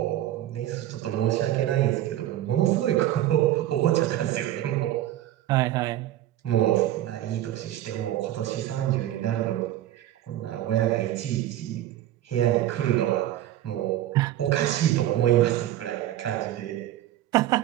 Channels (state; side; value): quieter; left; 13.2 dB